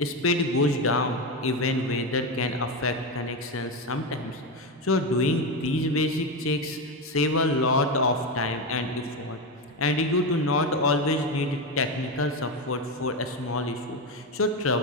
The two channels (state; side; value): normal; both; correlation 0.14